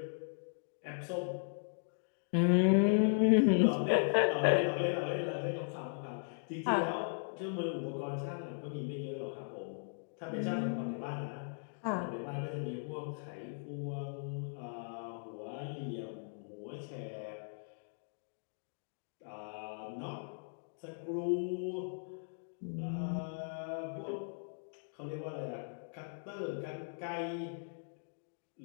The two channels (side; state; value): right; silent; digital silence